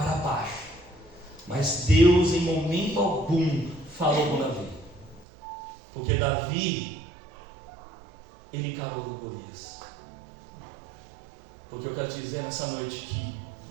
baixo. Mas Deus, em momento algum, falou com Davi, porque Davi, ele encarou Golias. Porque eu quero te dizer nessa noite que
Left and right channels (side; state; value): left; drops out; at 5.2 s